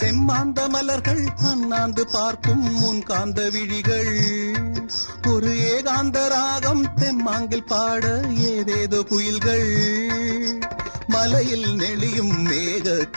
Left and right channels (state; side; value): inverted; both; correlation -1.00